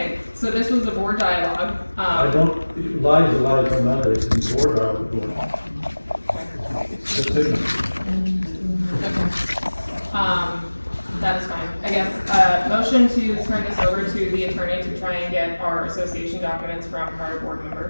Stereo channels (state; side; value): inverted; both; correlation -1.00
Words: so this was the board dialogue. I don't, lies are lies, don't matter, it's in the order I was going on. That's it. That is fine. I guess, motion to turn this over to the attorney to try and get our association documents from prior board